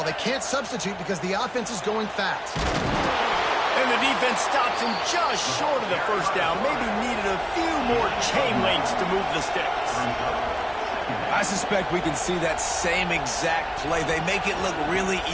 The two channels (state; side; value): identical; both; correlation 1.00